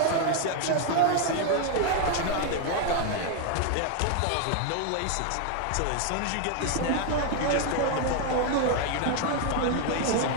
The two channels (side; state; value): both; different; correlation 0.01